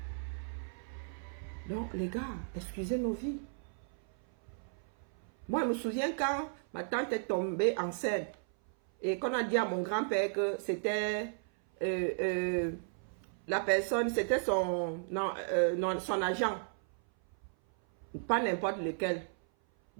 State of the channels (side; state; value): left; silent; 55 dB below the other